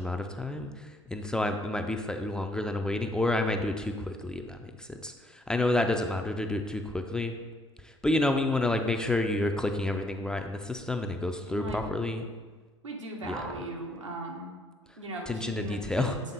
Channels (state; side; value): normal; both; correlation 0.70